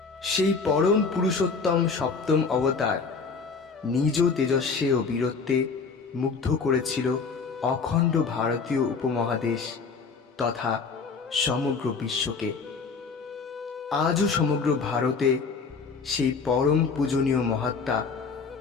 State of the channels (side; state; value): right; quieter; 4.9 dB